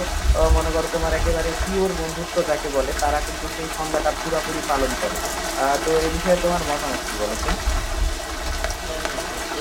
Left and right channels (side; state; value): both; identical; correlation 1.00